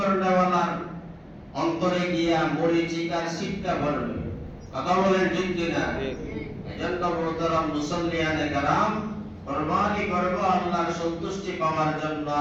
অন্তরে গিয়া মরিচিকার শিক্ষা পড়বে। কথা বলেন ঠিক কিনা? এজন্য মোহতারাম মুসল্লিয়ানে কেরাম, কুরবানি করব আল্লাহর সন্তুষ্টি পাওয়ার জন্য।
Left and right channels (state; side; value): identical; both; correlation 1.00